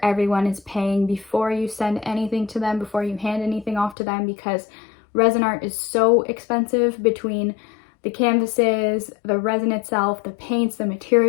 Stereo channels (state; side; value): drops out; right; at 4.0 s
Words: everyone is paying before you send anything to them, before you hand anything off to them, because resin art is so expensive. Between the canvases, the resin itself, the paints, the